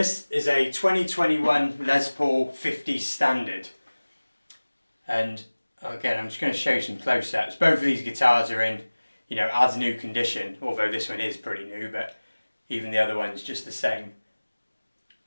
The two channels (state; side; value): inverted; both; correlation -1.00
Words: is a 2021 Les Paul 50 Standard, and again I'm just going to show you some close-ups. Both of these guitars are in, you know, as new condition, although this one is pretty new, but even the other one's just the same.